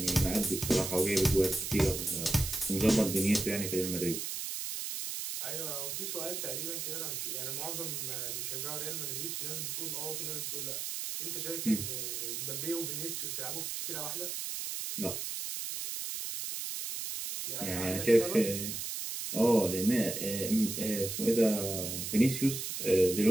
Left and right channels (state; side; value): noise; right; hiss, 4 dB below the sound